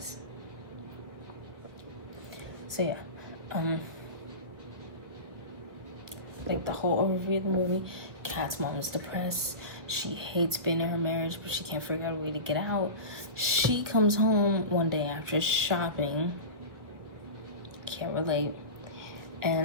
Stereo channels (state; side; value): late; left; 1.3 ms